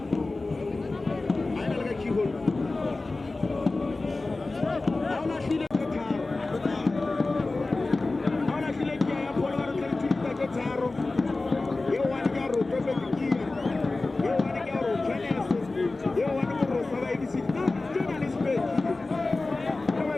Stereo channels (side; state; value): right; quieter; 3.3 dB